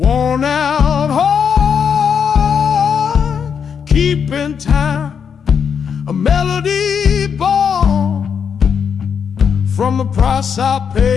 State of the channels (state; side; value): quieter; right; 7.0 dB